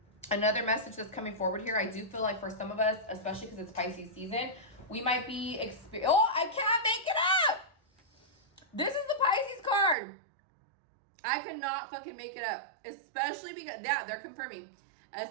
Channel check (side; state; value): left; drops out; at 10.0 s